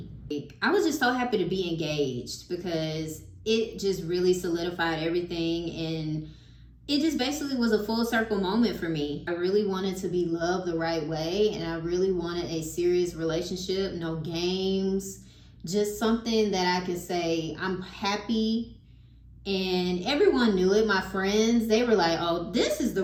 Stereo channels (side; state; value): both; identical; correlation 1.00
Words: I was just so happy to be engaged because it just really solidified everything, and it just basically was a full circle moment for me. I really wanted to be loved the right way, and I really wanted a serious relationship, no games, just something that I could say I'm happy. And everyone knew it. My friends, they were like, oh, this is the